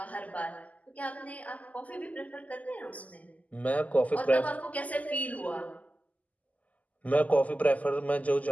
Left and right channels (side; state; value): right; late; 0.075 ms